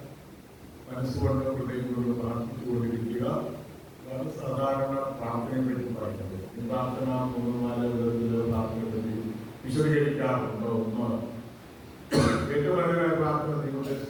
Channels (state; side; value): identical; both; correlation 1.00